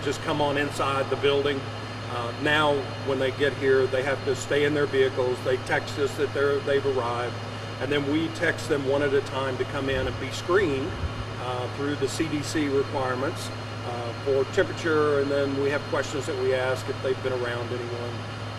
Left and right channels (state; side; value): identical; both; correlation 1.00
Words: just come on inside the building. Now when they get here, they have to stay in their vehicles. They text us that they've arrived, and then we text them one at a time to come in and be screened through the CDC requirements for temperature, and then we have questions that we ask if they've been around anyone